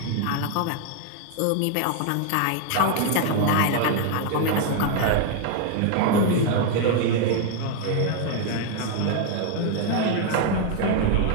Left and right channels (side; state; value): both; different; correlation 0.00